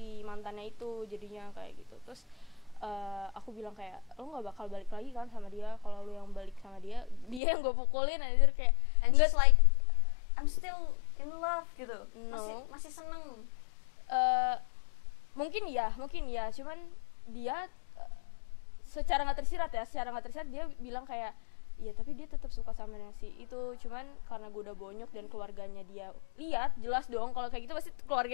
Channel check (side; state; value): right; drops out; at 7.4 s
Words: mantannya itu jadinya kayak gitu. Terus aku bilang kayak lo nggak bakal balik lagi kan sama dia, kalau lo yang balik sama dia yang gue pukulin aja kayak. And she's like I'm still in love gitu. No. Masih seneng. Mungkin ya, cuman dia secara nggak tersirat dia bilang kayak iya tapi dia tetap suka sama si itu, cuman karena gue udah bonyok dan keluarganya dia lihat, jelas dong kalau kayak gitu pasti